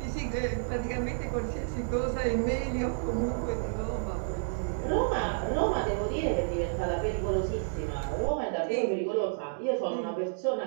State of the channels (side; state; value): left; silent; digital silence